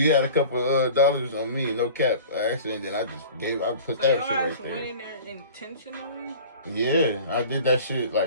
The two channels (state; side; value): inverted; both; correlation -0.42